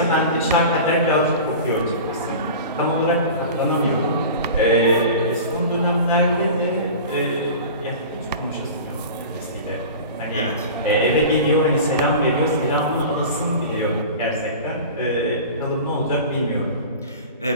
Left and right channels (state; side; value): inverted; both; correlation -0.35